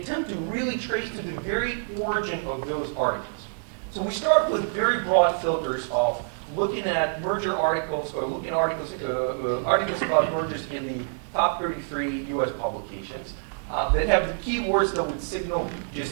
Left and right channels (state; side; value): silent; left; digital silence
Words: to really trace to the very origin of those articles. So we start with very broad filters of looking at merger articles, or looking at articles about mergers in the top 33 US publications that have the keywords that would signal